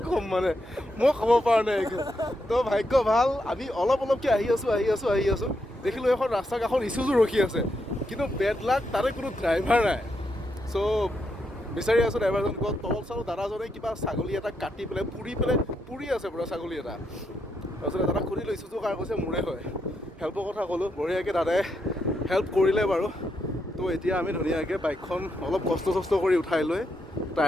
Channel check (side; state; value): both; normal; correlation 0.81